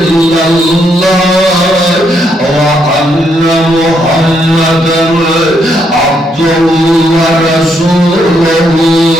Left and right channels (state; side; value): normal; both; correlation 0.75